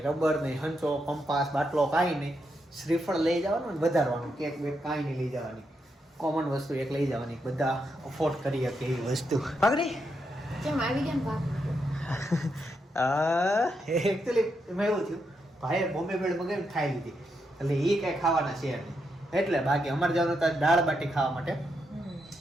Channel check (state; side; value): normal; both; correlation 0.82